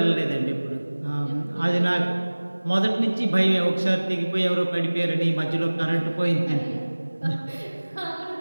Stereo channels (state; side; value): inverted; both; correlation -1.00